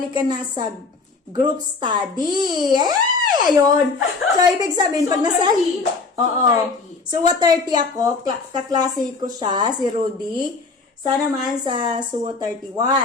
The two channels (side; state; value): right; quieter; 4.2 dB